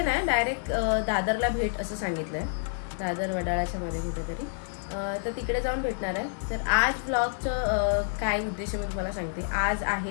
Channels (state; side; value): silent; right; 59 dB below the other